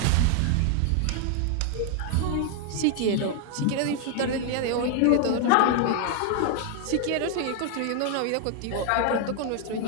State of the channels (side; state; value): both; different; correlation 0.00